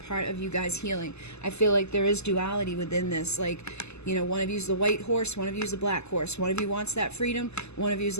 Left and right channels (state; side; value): late; right; 0.80 ms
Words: of you guys healing. I feel like there is duality within this. Like, one of you's the white horse, one of you's the black horse. One of you wants that freedom. One of you's